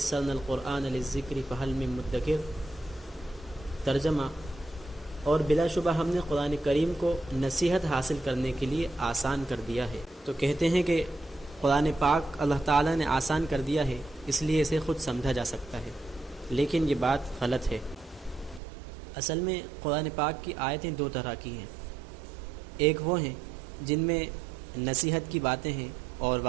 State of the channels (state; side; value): drops out; left; at 18.6 s